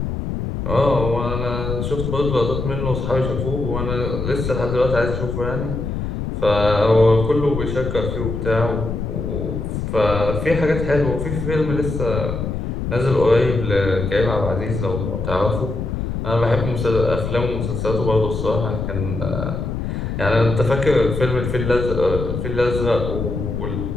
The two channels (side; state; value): left; noise; rumble, 3 dB below the sound